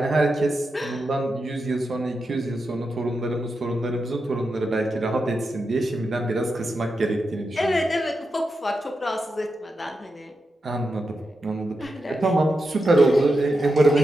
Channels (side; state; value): both; normal; correlation 0.88